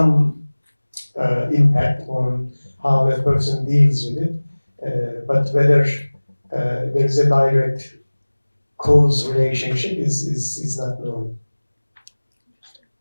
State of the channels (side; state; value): both; inverted; correlation -1.00